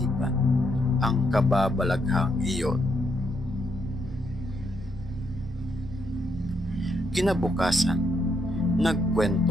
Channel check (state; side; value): noise; right; rumble, 15 dB below the sound